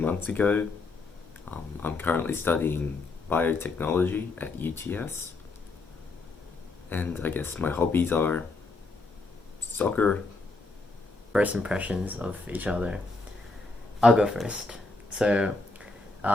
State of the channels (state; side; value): quieter; right; 3.5 dB